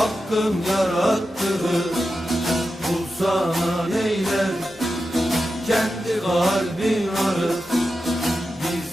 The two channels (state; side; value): normal; both; correlation 0.90